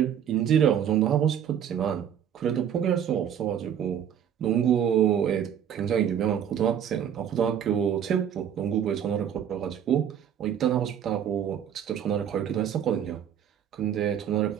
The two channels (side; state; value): left; quieter; 9.1 dB